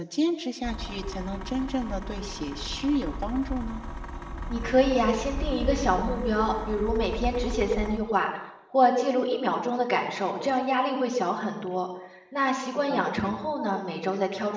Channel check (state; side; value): identical; both; correlation 1.00